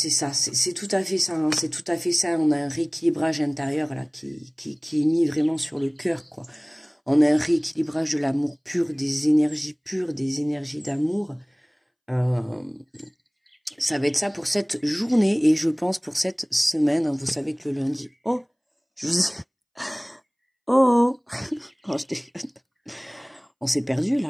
ça, c'est tout à fait ça, hein, c'est tout à fait ça. On a un rééquilibrage intérieur là qui est mis vraiment sur le cœur, quoi. On a un rééquilibrage de l'amour pur, des énergies pures, des énergies d'amour. Ça va être ça pour cette journée et je pense pour cette semaine. Hein, vous savez que le lundi... Oh, je vous... Oh, oh je déconne. On s'est perdu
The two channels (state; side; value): identical; both; correlation 1.00